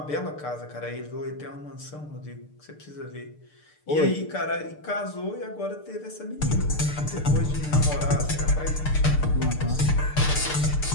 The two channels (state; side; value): late; right; 6.7 ms